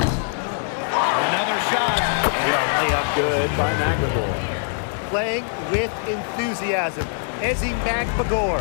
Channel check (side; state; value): right; silent; 64 dB below the other